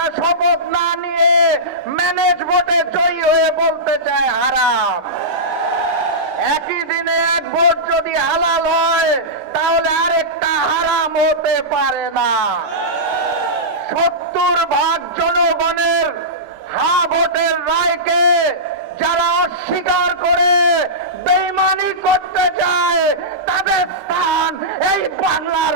শপথ না নিয়ে ম্যানেজ ভোটে জয়ী হয়ে বলতে চায় হারাম। একই দিনে এক ভোট যদি হালাল হয় তাহলে আরেকটা হারাম হতে পারে না। 70% জনগণের হা ভোটের রায়কে যারা অস্বীকার করে বেঈমানি করতে চায় তাদের স্থান এই বাংলার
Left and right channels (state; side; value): late; left; 5.2 ms